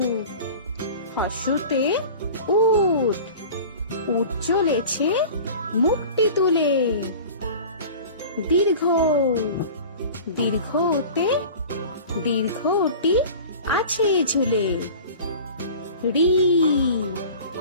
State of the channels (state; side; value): inverted; both; correlation -0.39